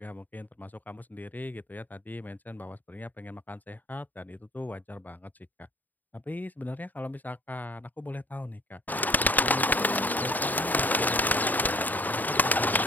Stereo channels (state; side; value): late; right; 0.086 ms